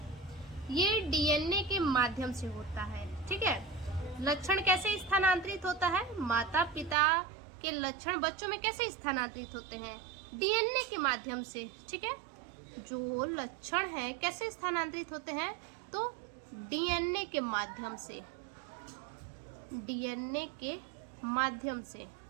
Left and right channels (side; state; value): left; drops out; at 7.0 s